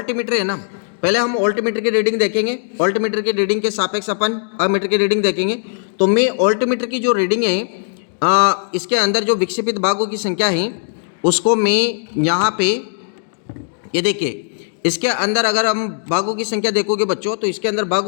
है ना, पहले हम वोल्टमीटर की रीडिंग देखेंगे, वोल्टमीटर की रीडिंग के सापेक्ष अपन अमीटर की रीडिंग देखेंगे। तो मैं वोल्टमीटर की जो रीडिंग है इसके अंदर जो विक्षेपित भागों की संख्या है उसको मैं यहाँ पे, ये देखिए इसके अंदर अगर हम भागों की संख्या देखोगे बच्चों तो इसके अंदर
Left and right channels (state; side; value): silent; right; digital silence